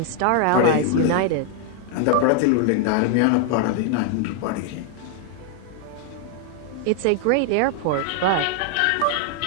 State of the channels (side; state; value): both; different; correlation 0.00